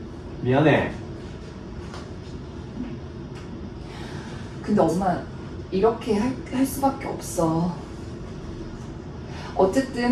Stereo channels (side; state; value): both; identical; correlation 1.00